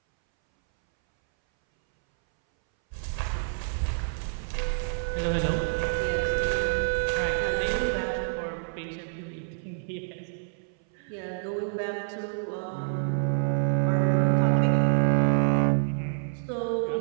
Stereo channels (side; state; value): left; silent; 60 dB below the other